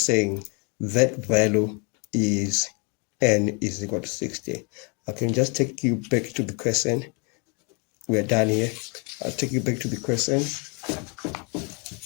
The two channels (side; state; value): right; quieter; 33.5 dB